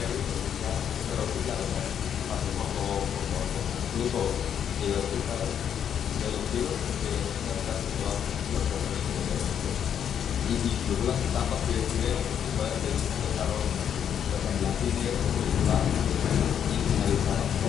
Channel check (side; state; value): right; quieter; 8.7 dB